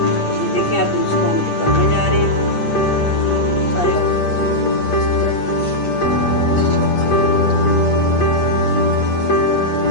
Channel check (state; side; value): late; right; 8.4 ms